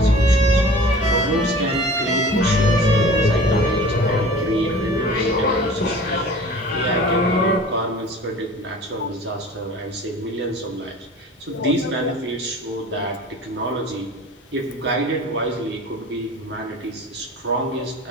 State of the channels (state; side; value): normal; both; correlation 0.42